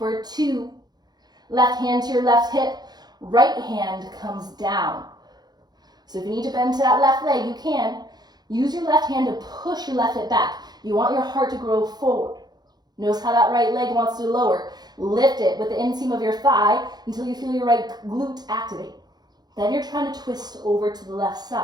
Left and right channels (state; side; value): late; left; 0.20 ms